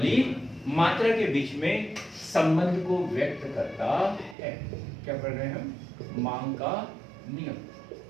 मात्रा के बीच में संबंध को व्यक्त करता है। क्या पढ़ रहे हैं हम? मांग का नियम।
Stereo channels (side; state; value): left; drops out; at 4.4 s